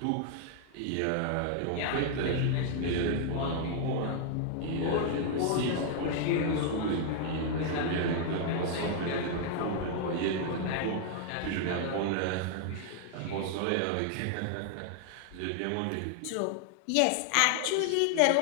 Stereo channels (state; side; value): different; both; correlation 0.00